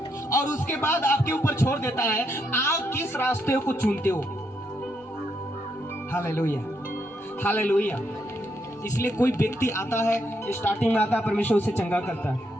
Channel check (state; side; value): normal; both; correlation 0.78